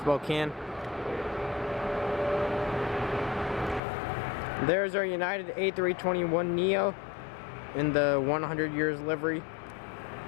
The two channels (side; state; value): right; drops out; at 3.8 s